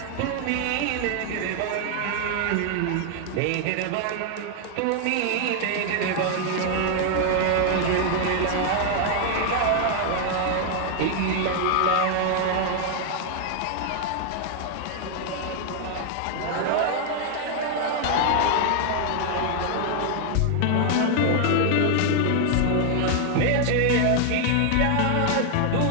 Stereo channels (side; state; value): both; different; correlation 0.00